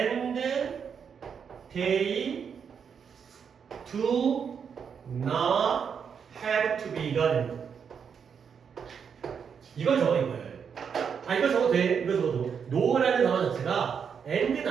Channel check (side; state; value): left; quieter; 6.9 dB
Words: they do not have to be가 됩니다. 이걸 적어 이거예요. 아 이걸 적어도 돼. 이걸 적어도 no라는 단어 자체가 and